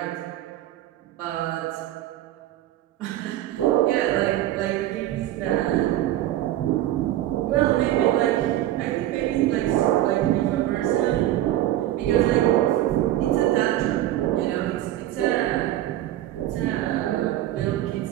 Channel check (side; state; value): left; quieter; 13.8 dB